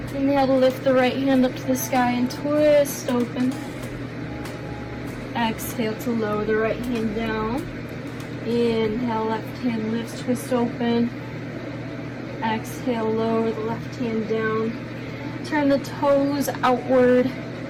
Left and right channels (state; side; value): identical; both; correlation 1.00